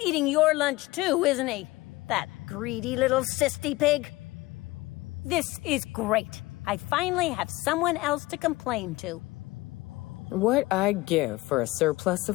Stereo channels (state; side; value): quieter; right; 20.4 dB